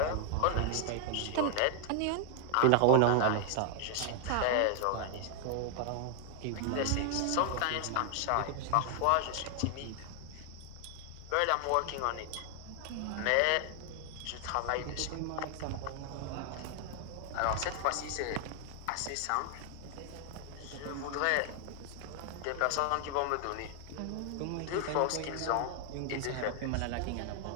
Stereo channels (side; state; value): both; different; correlation 0.00